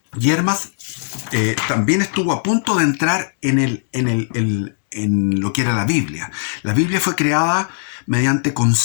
Y Hermas también estuvo a punto de entrar en lo que era la Biblia. La Biblia fue creada mediante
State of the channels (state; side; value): silent; right; digital silence